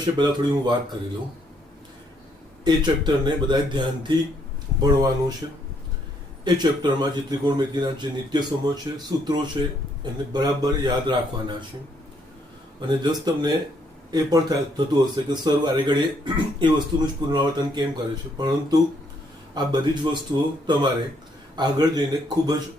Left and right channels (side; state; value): both; normal; correlation 0.71